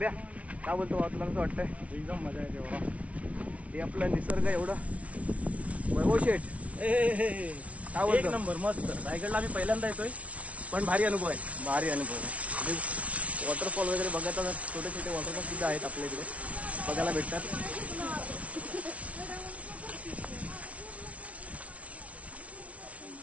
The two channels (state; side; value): late; left; 0.065 ms